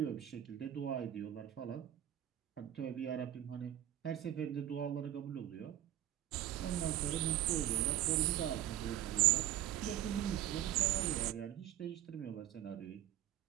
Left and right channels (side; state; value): left; quieter; 12.3 dB